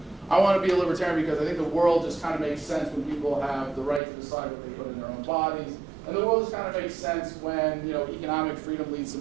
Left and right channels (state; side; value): drops out; left; at 4.0 s